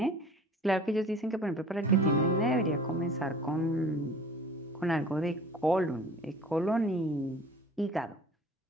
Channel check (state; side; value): normal; both; correlation 0.46